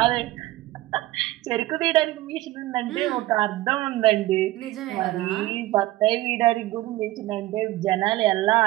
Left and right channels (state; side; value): quieter; left; 17.0 dB